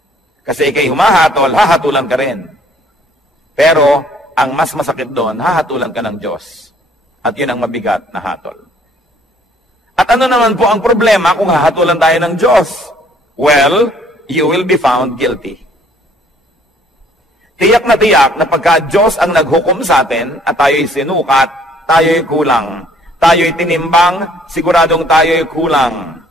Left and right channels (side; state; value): both; normal; correlation 0.60